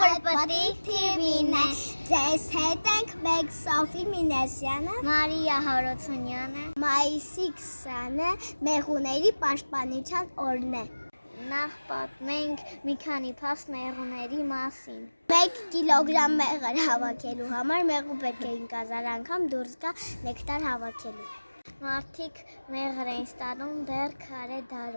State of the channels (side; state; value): both; inverted; correlation -1.00